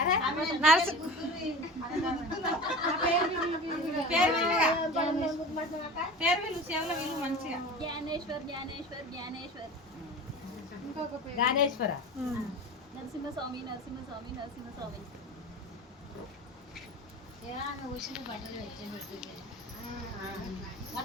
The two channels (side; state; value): both; normal; correlation 0.34